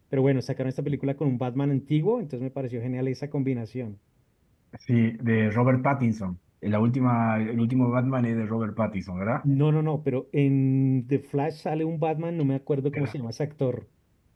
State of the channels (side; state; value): both; identical; correlation 1.00